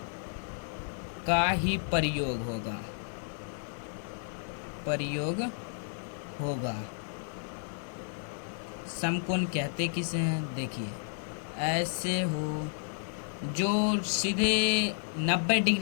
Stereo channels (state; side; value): silent; right; digital silence